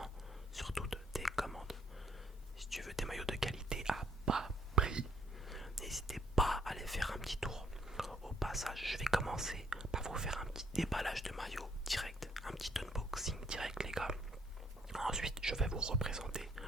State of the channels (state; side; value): normal; both; correlation 0.67